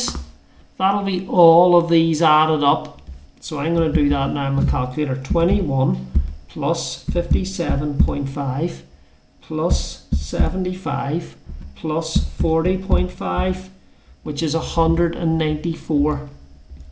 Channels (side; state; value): both; identical; correlation 1.00